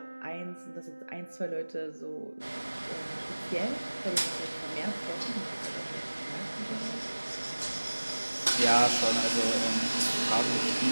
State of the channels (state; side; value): inverted; both; correlation -1.00